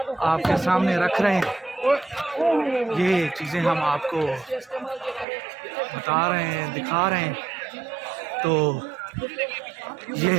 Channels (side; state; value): left; drops out; at 5.2 s